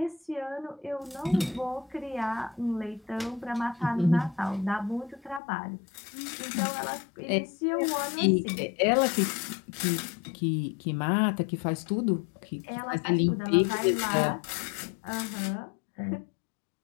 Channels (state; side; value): drops out; right; at 5.4 s